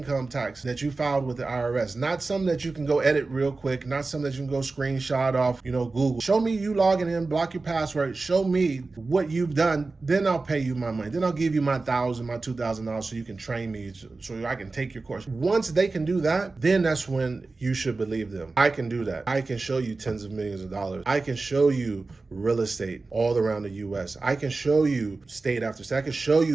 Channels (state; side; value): quieter; left; 3.7 dB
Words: tax that you filed with the IRS, not something that you can go edit real quick, not something that you can go screenshot off, Google. Show me you logging in, block your password, show me what you've done, then I'll pay you my money. Then I'll give you my $1,000, my $2,000 so you can train me, so I can take your course. Once they can do that, then that's when you should believe them. I can do that. I can show you tens of millions of dollars. I can show you real estate all around the US. I can show you state after state. I can show